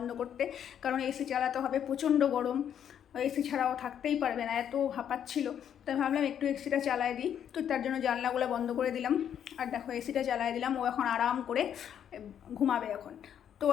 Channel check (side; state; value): right; quieter; 9.2 dB